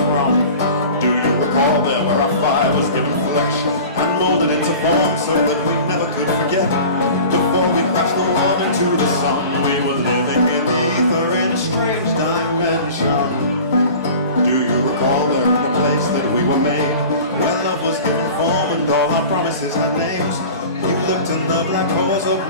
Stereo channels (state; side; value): inverted; both; correlation -0.39